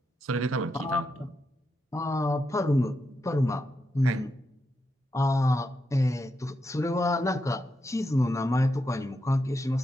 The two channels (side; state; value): both; normal; correlation 0.85